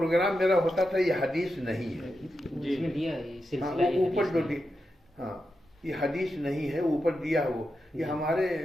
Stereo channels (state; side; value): normal; both; correlation 0.88